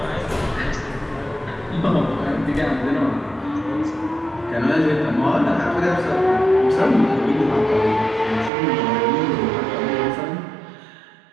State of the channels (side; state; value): left; drops out; at 8.5 s